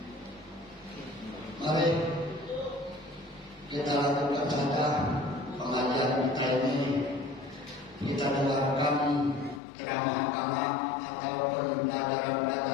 Mari kita lakukan saja pengajian kita ini. Kita dengarkan ceramah-ceramah atau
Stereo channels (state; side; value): drops out; right; at 9.6 s